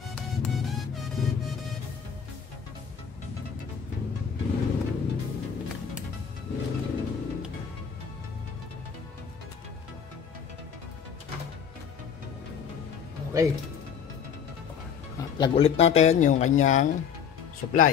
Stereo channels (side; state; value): right; quieter; 7.3 dB